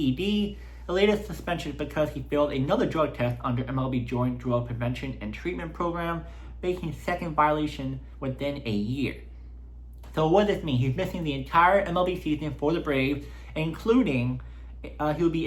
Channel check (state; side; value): identical; both; correlation 1.00